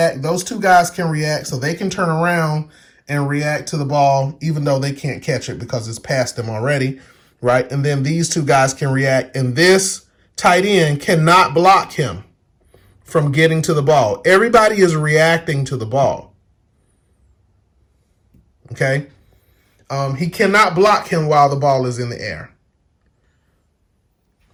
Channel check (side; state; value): both; identical; correlation 1.00